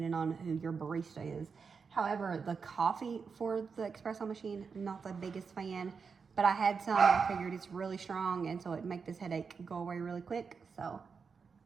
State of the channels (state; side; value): quieter; left; 5.5 dB